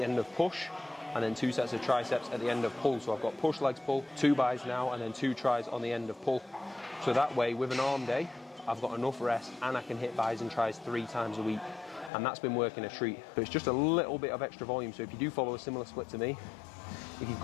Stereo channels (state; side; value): drops out; right; at 12.1 s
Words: end of push, and then 2 sets of triceps at the end of pull. So I've got push, legs, pull, 2 bis now, and then 2 tries on the end of pull. So that way, with an arm day, I've got enough rest and I can hit bis and tries 3 times a week. And that's been working a treat. So it's just a little bit of extra volume. So if you do follow a similar split to me, if you've